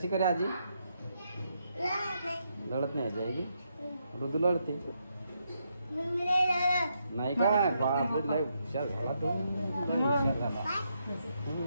करे आजी लढत नाही आजी आहे की ऋतू लढते नाही काय बापरे लय हुशार झाला तू लय हुशार झाला.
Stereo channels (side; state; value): both; inverted; correlation -0.79